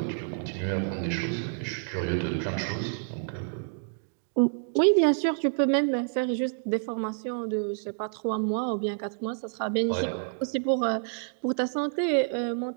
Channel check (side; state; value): left; silent; digital silence